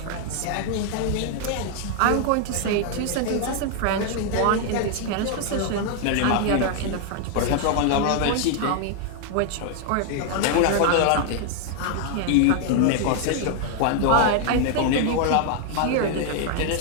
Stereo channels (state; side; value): different; both; correlation 0.00